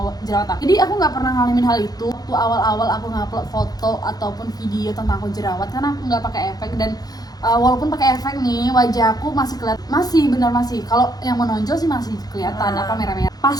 jerawat aku. Jadi aku nggak pernah ngalamin hal itu. Waktu awal-awal aku ngupload foto ataupun video tentang aku jerawat karena aku nggak pakai efek, dan walaupun pakai efek nih wajah aku masih kalau yang menonjol sih masih kelihatan apa merah-merah. Pas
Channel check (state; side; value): late; right; 0.19 ms